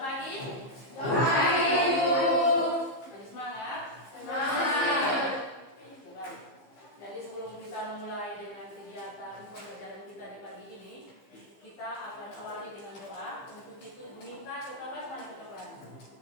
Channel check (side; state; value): right; late; 15 ms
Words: Ada semangat? Coba. Jadi sebelum kita mulai dengan kegiatan pembelajaran kita di pagi ini, kita akan awali dengan doa. Untuk itu minta ketua kelas mana ketua kelas?